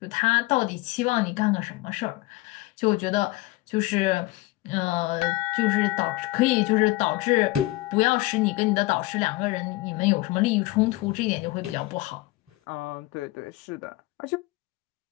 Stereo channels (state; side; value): quieter; right; 19.7 dB